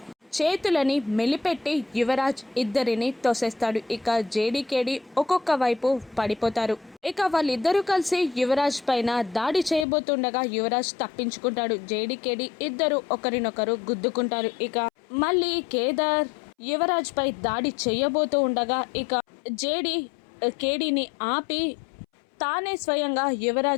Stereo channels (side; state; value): right; drops out; at 9.9 s